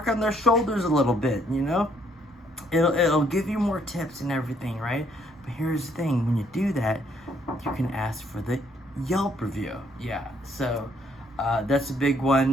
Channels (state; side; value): normal; both; correlation 0.68